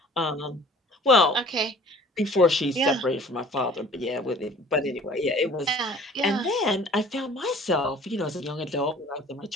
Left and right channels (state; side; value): normal; both; correlation 0.50